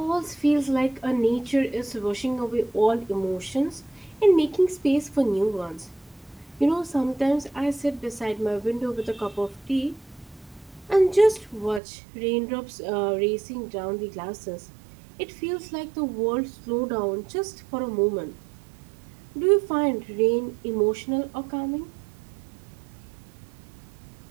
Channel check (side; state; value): left; drops out; at 11.8 s